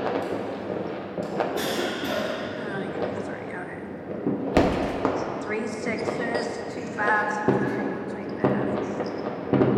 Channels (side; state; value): both; identical; correlation 1.00